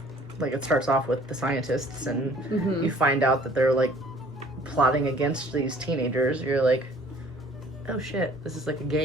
like, it starts off with the scientists, and you find out that they're like plotting against these teenagers, you're like, oh shit, this is like a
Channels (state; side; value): normal; both; correlation 0.54